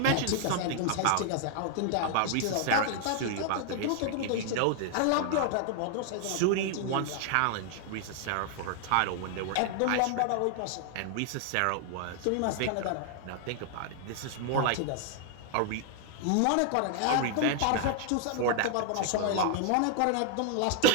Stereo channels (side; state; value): both; different; correlation 0.00